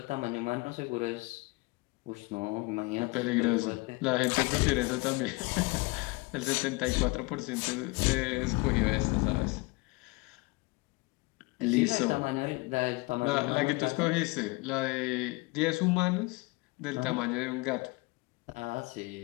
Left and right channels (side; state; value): right; quieter; 25.5 dB